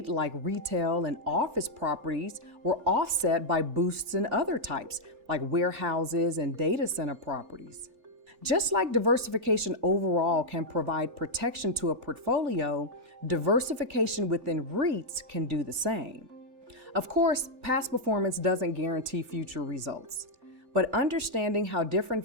like retail and office properties, were offset by boosts in other types, like warehouses and data center properties. Just like diversification overall can provide protection to a portfolio, diversification within REITs can do the same. Of course, past performance doesn't guarantee future results, but understanding how different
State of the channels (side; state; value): left; late; 3.4 ms